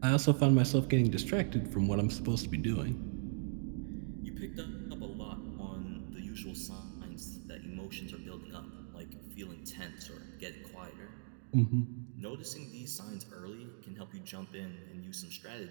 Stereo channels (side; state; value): left; silent; digital silence